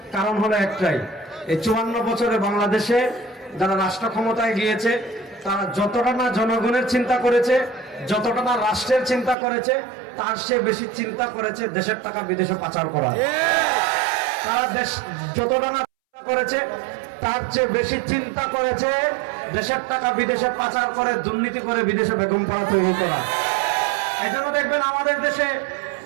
কারণ হলো একটাই, এই 54 বছরে বাংলাদেশে যারা রাষ্ট্র ক্ষমতায় গিয়েছে, তারা যতটা না জনগণের চিন্তা করেছে, যতটা না রাষ্ট্রের চিন্তা করেছে, তার চেয়ে বেশি চিন্তা করেছে দেশের টাকা বিদেশে পাচার করা। তারা দেশ যতটা না করেছে, তার চেয়ে বেশি চিন্তা করেছে দেশের টাকা বিদেশে পাচার করে, দুর্নীতি করে বিদেশে বেগম পাড়া তৈরি করা। এই জন্য দেখবেন আমাদের দেশে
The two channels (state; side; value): drops out; left; at 9.3 s